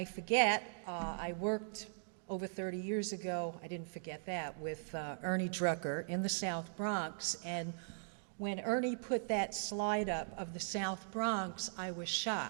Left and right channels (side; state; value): left; silent; digital silence